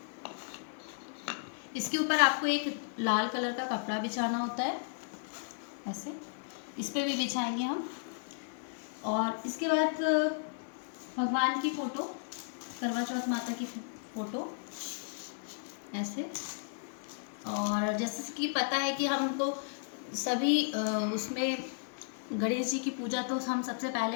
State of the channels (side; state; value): right; silent; 55 dB below the other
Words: इसके ऊपर आपको एक लाल कलर का कपड़ा बिछाना होता है, ऐसे इस पे भी बिछाएंगे हम। और इसके बाद भगवान की फ़ोटो, करवा चौथ माता की फ़ोटो ऐसे। और जैसे कि पता है कि हमको सभी उसमें गणेश जी की पूजा तो हम सबसे